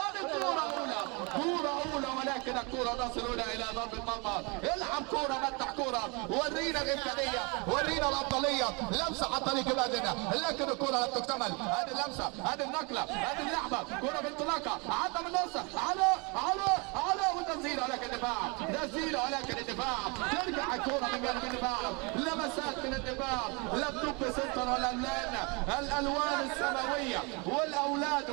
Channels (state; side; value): quieter; left; 30.4 dB